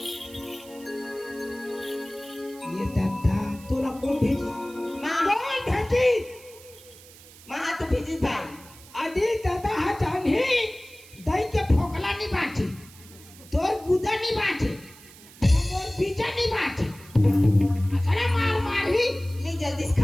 ये दादा तोरा कौन भेजी? माँ, कौन भेजी? माँ तो भेजी भाई। अरे दादा हा जानी दई के फोकला नहीं बाची, तोर गुदा नहीं बाची, तोर बीजा नहीं बाची। अरे मार मार ही ले जल्दी से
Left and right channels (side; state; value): right; noise; hiss, 21 dB below the sound